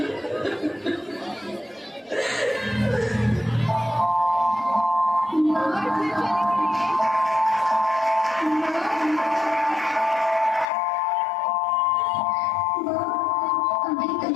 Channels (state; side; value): drops out; right; at 10.7 s